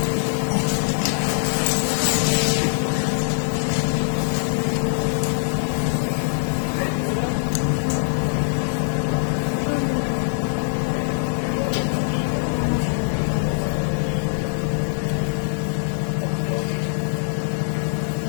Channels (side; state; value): right; silent; digital silence